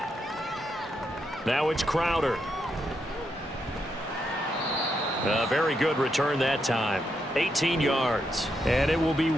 Now it's Crowder. A very good return that time. 18 yards. And it will be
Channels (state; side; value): normal; both; correlation 0.81